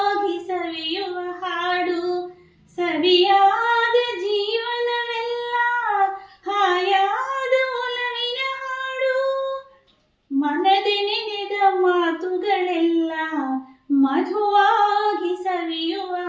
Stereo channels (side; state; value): both; identical; correlation 1.00